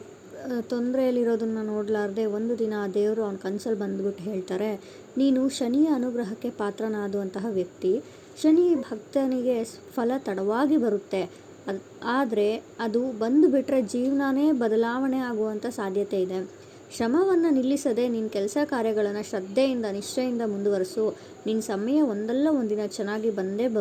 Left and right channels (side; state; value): both; identical; correlation 1.00